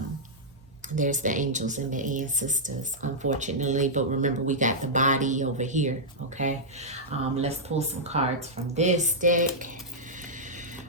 there's the angels and the ancestors, unfortunately, but remember we got the body over here. Okay, let's pull some cards from this deck.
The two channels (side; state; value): both; normal; correlation -0.09